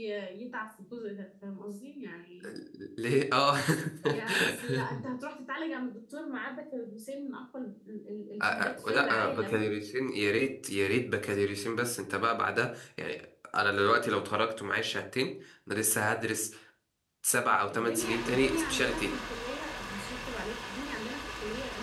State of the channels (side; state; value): both; identical; correlation 1.00